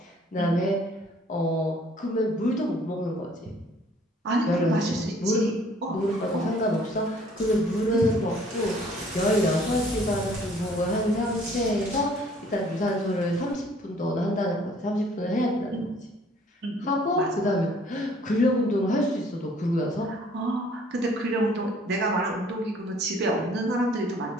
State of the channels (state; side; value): normal; both; correlation 0.57